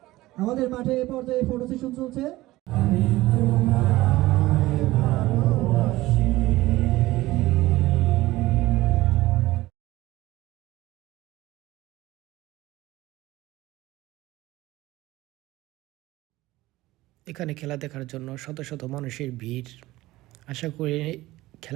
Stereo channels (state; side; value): quieter; left; 17.8 dB